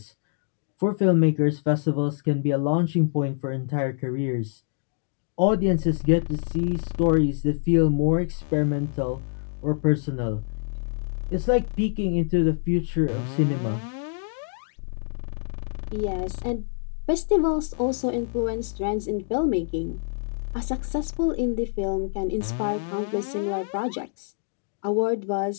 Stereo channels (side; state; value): right; silent; digital silence